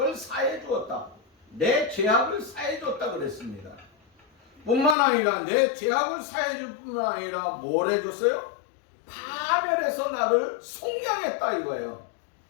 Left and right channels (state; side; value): drops out; right; at 5.0 s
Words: 사해 주었다. 내 죄악을 사해 줬다 그랬습니다. 뿐만 아니라 내 죄악을 사해 줄 뿐만 아니라 뭘 해줬어요? 파멸해서 나를 속량했다 이거예요.